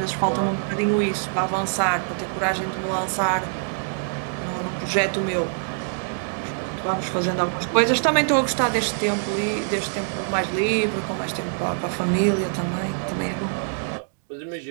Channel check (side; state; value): left; silent; digital silence